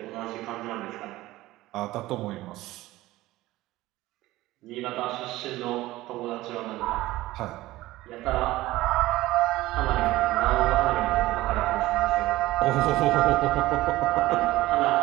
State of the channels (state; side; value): quieter; left; 17.4 dB